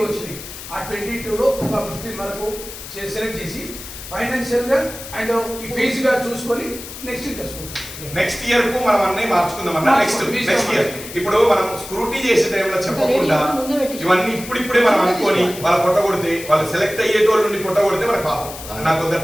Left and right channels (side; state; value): left; noise; hiss, 12 dB below the sound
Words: వచ్చింది. ఆ 22లో ఒక 15 వరకు సెలెక్ట్ చేసి ఫైనాన్షియల్ గా అండ్ ఈ ఫీజు గా చూసుకొని నెక్స్ట్ తీసుకుంటాం. నెక్స్ట్ ఇయర్ కు మనం అన్నీ మార్చుకుందాం అన్న. నెక్స్ట్ ఇయర్ ఇప్పుడు మనం స్క్రూటీ చేసే టైంలో చెప్పకుండా ఇవన్నీ ఇప్పుడిప్పుడే మనం అనుకొని వాళ్ళ పొట్టగొడితే వాళ్ళు సెలెక్ట్ అయ్యేటోళ్ళ నుండి పొట్టగొడితే మనకు పాపం. నాకు